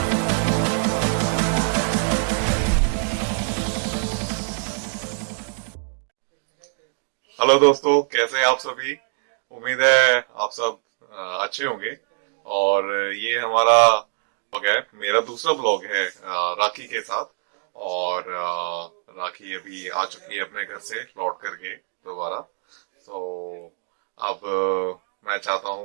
दोस्तों, कैसे हैं आप सभी। उम्मीद है आप सब अच्छे होंगे। और ये हमारा ब्लॉग है, मेरा दूसरा ब्लॉग है राखी के साथ। और राखी अभी आ चुकी है अपने घर से लौट करके दोबारा। तो अब मैं चाहता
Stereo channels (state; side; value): silent; left; 63 dB below the other